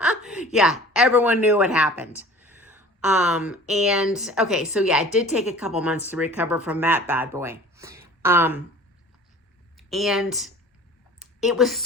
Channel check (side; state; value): both; normal; correlation 0.44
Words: Yeah, everyone knew what happened. And okay, so yeah, it did take a couple months to recover from that bad boy. And it was